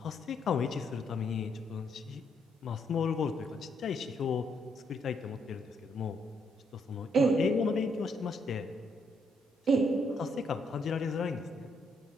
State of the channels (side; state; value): both; normal; correlation 0.74